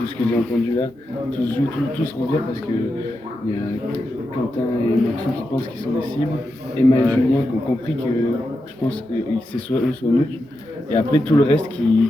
ce que j'ai entendu là. Tout se joue, tout se revient parce que il y a Quentin et Maxou qui pensent qu'ils sont des cibles. Emma et Julien qui ont compris que je pense que c'est soit eux soit nous. Et après tout le reste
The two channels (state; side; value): normal; both; correlation 0.87